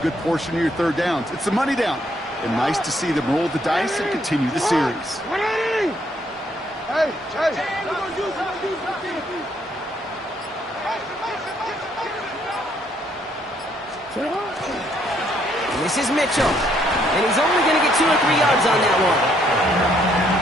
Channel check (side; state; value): both; normal; correlation 0.69